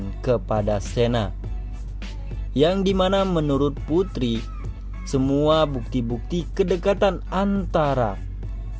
kepada Sena, yang dimana menurut Putri semua bukti-bukti kedekatan antara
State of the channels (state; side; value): identical; both; correlation 1.00